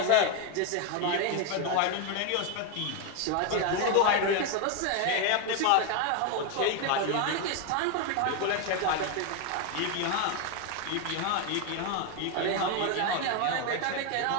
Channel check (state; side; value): different; both; correlation 0.02